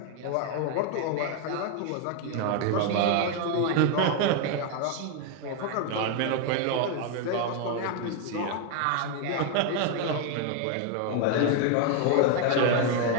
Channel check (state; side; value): different; both; correlation 0.00